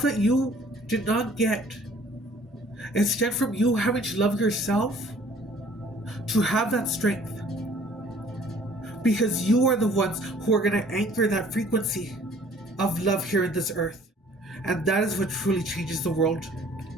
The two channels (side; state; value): both; normal; correlation 0.55